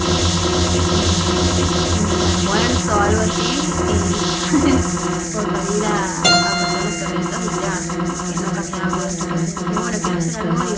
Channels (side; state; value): both; identical; correlation 1.00